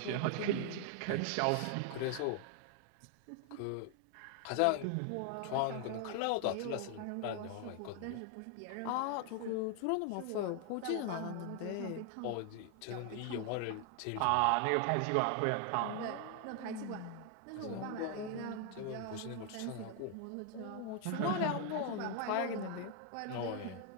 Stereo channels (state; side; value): different; both; correlation 0.00